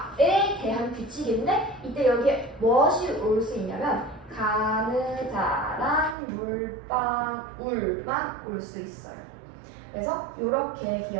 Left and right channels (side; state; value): left; drops out; at 6.2 s